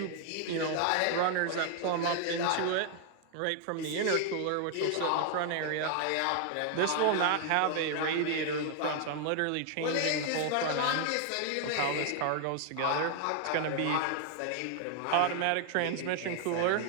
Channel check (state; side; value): different; both; correlation 0.00